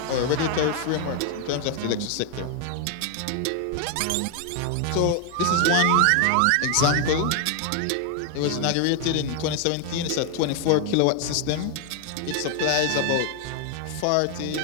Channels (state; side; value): different; both; correlation 0.00